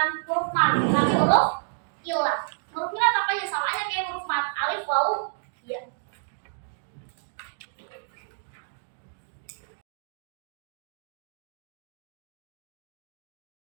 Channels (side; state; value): left; silent; digital silence